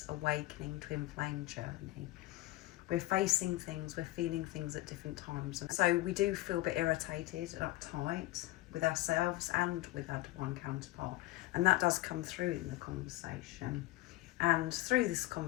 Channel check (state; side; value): quieter; right; 18.0 dB